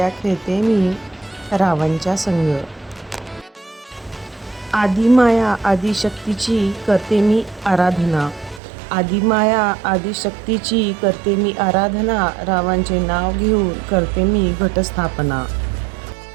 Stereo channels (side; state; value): left; drops out; at 8.6 s